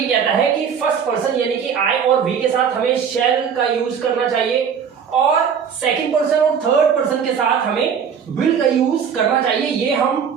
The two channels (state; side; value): quieter; left; 7.2 dB